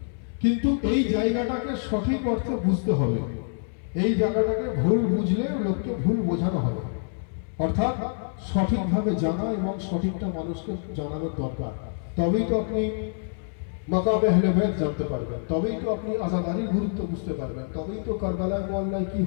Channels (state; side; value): silent; right; 60 dB below the other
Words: কিন্তু এই জায়গাটাকে সঠিক অর্থে বুঝতে হবে। এই জায়গাটাকে ভুল বুঝলে লোককে ভুল বোঝানো হবে, অর্থাৎ সঠিকভাবে জানা এবং সঠিকটা মানুষকে জানানোর দরকার। তবেই তো আপনি মাকামে আহলে বাইত জানতে পারবেন, তবেই তো আপনি আযাদারির গুরুত্ব বুঝতে পারবেন, তবেই তো কারবালায় মহল্লায় কি